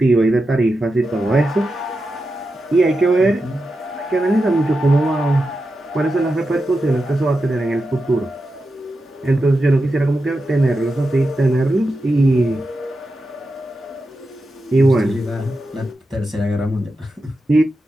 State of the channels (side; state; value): both; normal; correlation 0.89